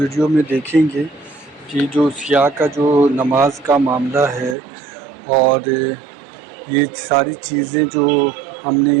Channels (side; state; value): left; drops out; at 4.5 s